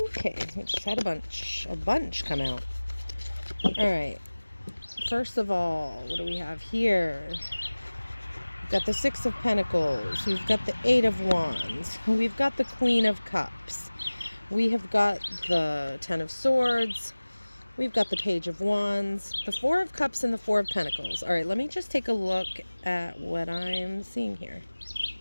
we just had a bunch come out. All right. First of all, what do we have here? We've got the Six of Pentacles. We've got the Eight of Wands. We've got the Queen of Cups. We have got the Ten of Swords. We've got the Page of Wands, the Four of Cups, and the Four of Pentacles. All right, let me just take a look at what I'm seeing here.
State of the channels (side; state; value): both; inverted; correlation -1.00